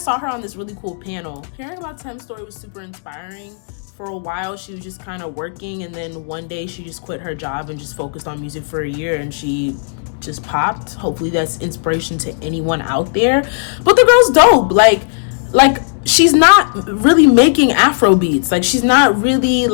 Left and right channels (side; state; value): right; silent; digital silence